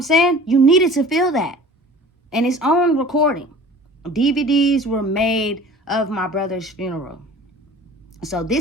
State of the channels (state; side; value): normal; both; correlation 0.44